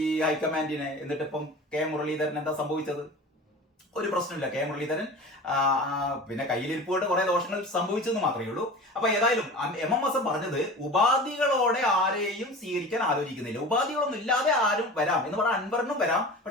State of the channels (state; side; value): normal; both; correlation 0.36